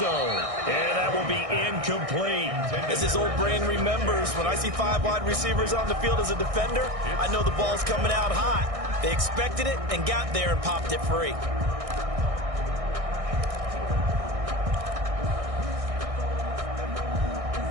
And that will be incomplete. As his old brain remembers, when I see 5 wide receivers on the field as a defender, I know the ball's coming out hot. They expected it and got there and popped it free.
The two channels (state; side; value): late; left; 1.6 ms